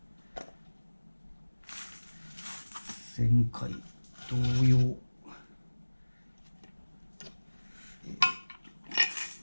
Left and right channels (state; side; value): inverted; both; correlation -1.00